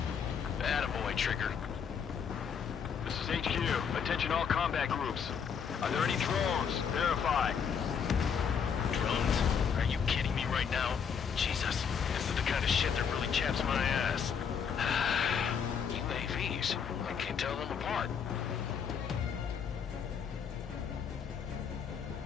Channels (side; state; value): right; quieter; 7.0 dB